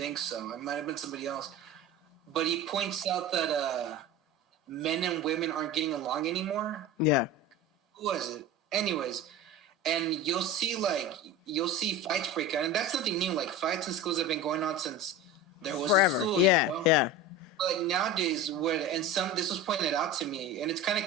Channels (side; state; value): both; normal; correlation 0.30